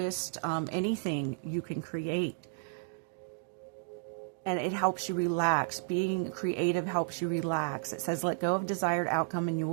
anything you can create. And it helps you relax. Being creative helps you relax. It says, let go of desired outcome and you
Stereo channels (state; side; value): silent; left; digital silence